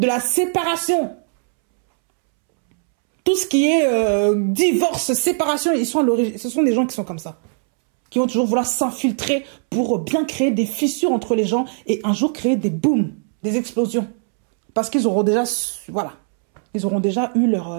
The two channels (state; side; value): silent; left; 66 dB below the other